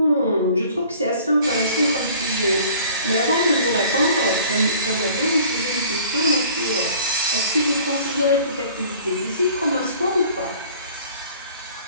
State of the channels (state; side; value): inverted; both; correlation -0.50